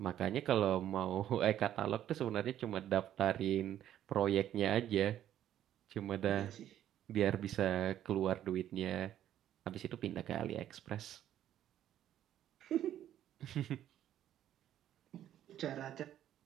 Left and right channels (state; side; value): quieter; left; 11.5 dB